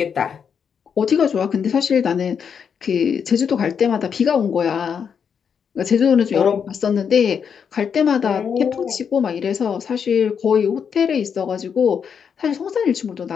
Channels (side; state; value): right; quieter; 7.0 dB